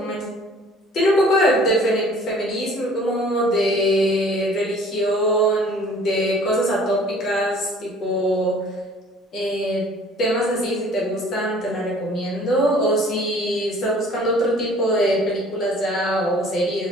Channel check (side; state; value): both; normal; correlation 0.52